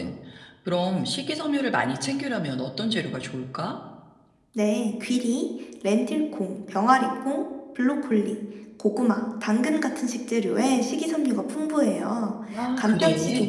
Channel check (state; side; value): identical; both; correlation 1.00